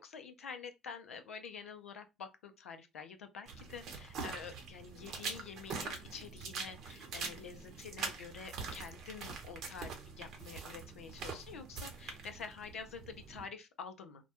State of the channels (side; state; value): both; normal; correlation 0.38